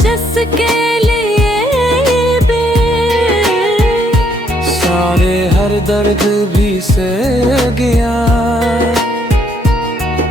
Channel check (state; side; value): normal; both; correlation 0.70